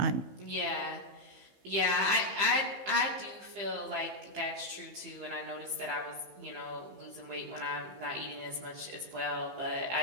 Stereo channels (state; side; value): late; left; 15 ms